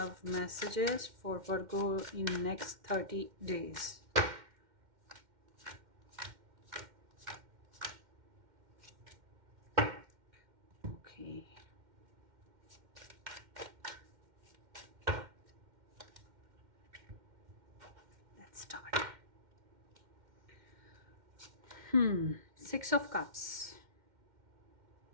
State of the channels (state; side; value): late; left; 2.1 ms